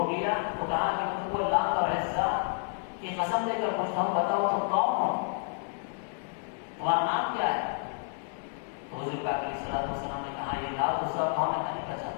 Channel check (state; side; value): silent; right; 58 dB below the other